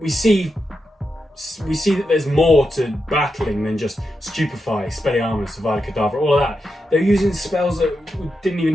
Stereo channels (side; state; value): both; normal; correlation 0.87